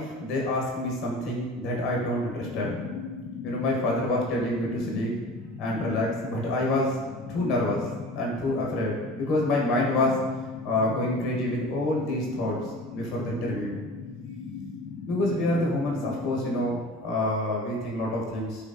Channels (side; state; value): both; normal; correlation 0.39